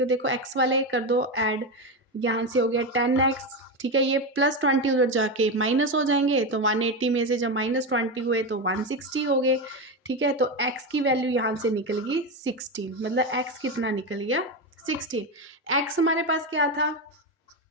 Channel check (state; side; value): normal; both; correlation 0.14